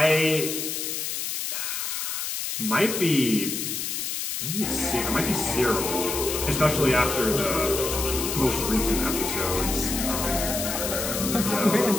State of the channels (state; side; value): noise; left; hiss, 3 dB below the sound